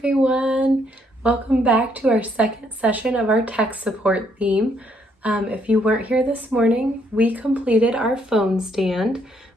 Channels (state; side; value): normal; both; correlation 0.70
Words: Welcome back to our second session of our tech support theme. If you weren't here this morning, we completed our phone stand,